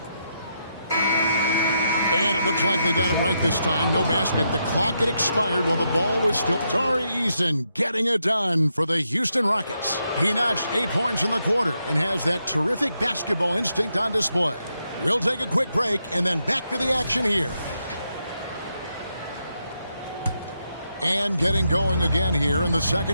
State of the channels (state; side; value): inverted; both; correlation -0.81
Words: And it looks like they got it right this time. No basket. The clock had expired while the ball was still. Tari Eason getting it done for the Houston Rockets. He notched 8 points in the quarter and has that terrific basketball instinct on display. We'll take a quick break and then back to the action here. And getting going again here in the